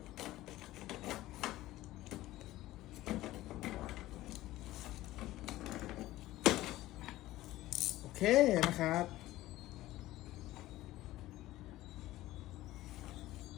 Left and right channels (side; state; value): right; quieter; 16.3 dB